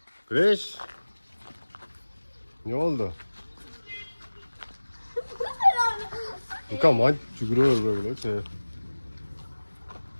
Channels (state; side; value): inverted; both; correlation -1.00